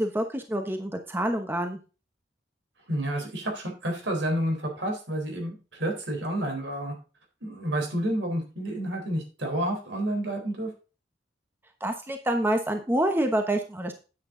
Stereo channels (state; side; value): normal; both; correlation 0.67